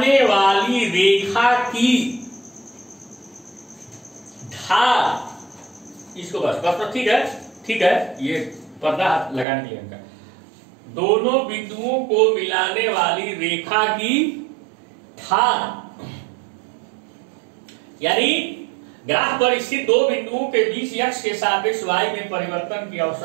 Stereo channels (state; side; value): drops out; left; at 9.5 s